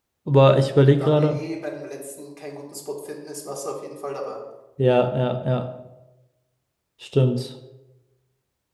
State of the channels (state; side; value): identical; both; correlation 1.00